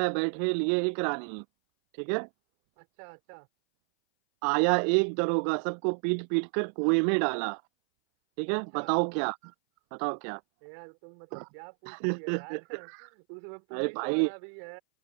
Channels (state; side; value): silent; left; 58 dB below the other